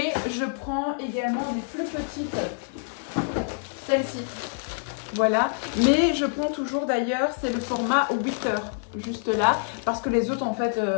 je prends également des plus petites, celles-ci, voilà, mais je prends toujours d'ailleurs, c'est le format 8 heures juste là parce que les autres en fait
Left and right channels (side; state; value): right; silent; digital silence